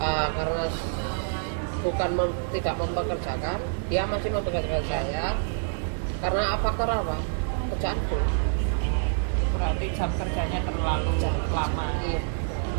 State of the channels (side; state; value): left; silent; digital silence